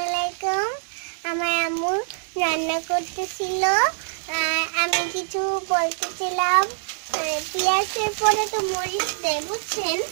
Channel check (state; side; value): silent; left; digital silence